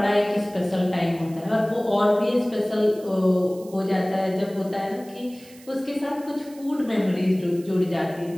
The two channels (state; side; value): noise; right; hiss, 23 dB below the sound